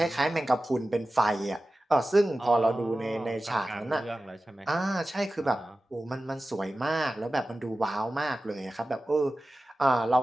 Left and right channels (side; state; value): both; normal; correlation 0.95